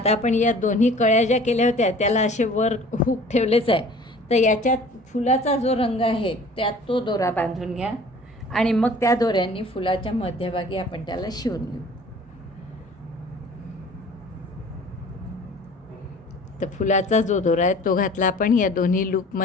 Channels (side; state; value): both; normal; correlation 0.47